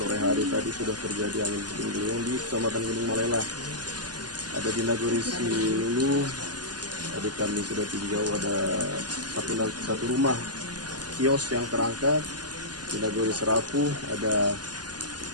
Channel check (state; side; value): late; left; 0.70 ms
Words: hari tadi sudah terjadi angin puting beliung di Kecamatan Gunung Malela. Ada di Nagori Silulu, tadi kami sudah tinjau ada satu rumah kios yang terangkat. Di Nagori Serapu ada